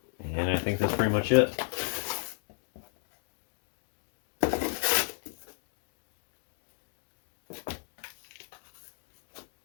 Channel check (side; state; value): right; silent; digital silence